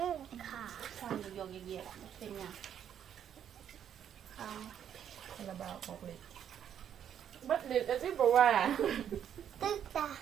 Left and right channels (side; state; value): left; quieter; 9.3 dB